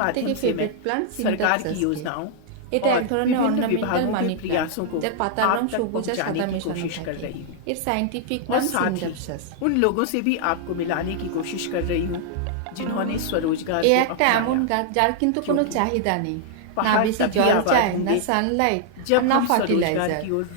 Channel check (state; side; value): different; both; correlation -0.01